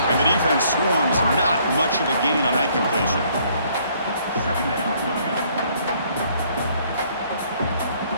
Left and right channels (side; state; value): both; inverted; correlation -0.64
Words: And the defense swarms. Not much of a gain on that completion.